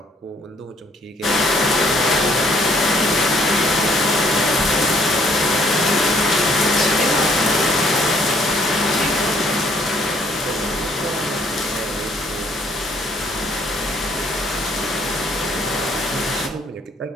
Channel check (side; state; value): both; normal; correlation 0.64